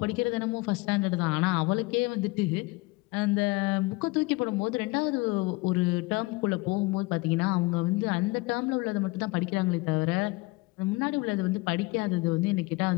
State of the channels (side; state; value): right; quieter; 23.7 dB